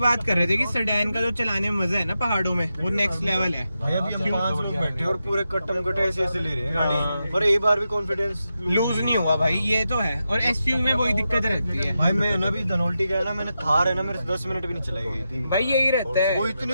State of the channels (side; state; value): both; inverted; correlation -0.88